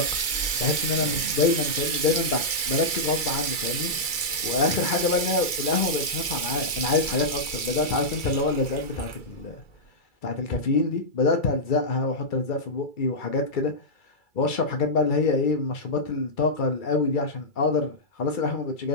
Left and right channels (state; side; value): late; right; 2.3 ms